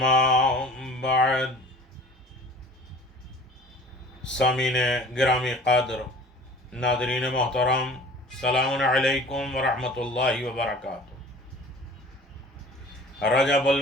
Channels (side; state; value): both; normal; correlation 0.45